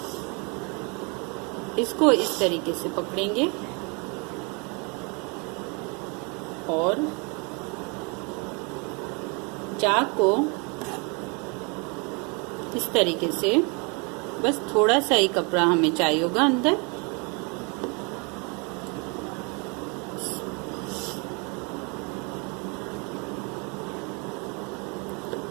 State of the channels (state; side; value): quieter; left; 32.2 dB